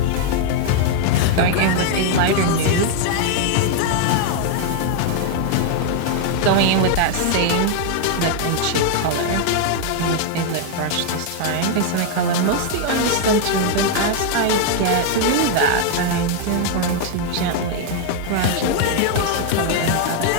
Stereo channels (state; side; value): different; both; correlation 0.00